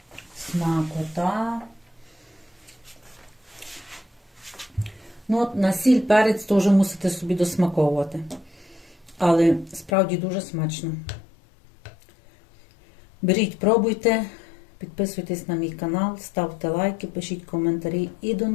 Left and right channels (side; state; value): right; drops out; at 9.9 s